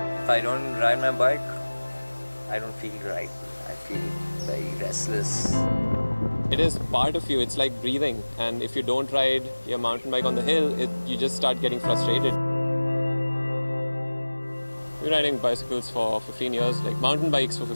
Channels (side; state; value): both; inverted; correlation -1.00